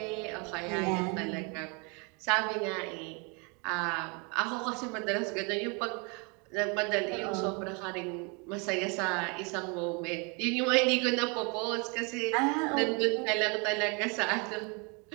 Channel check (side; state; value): left; quieter; 32.3 dB